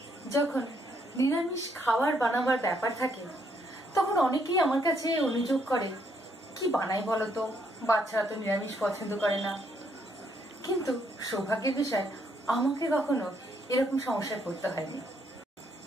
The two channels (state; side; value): normal; both; correlation 0.72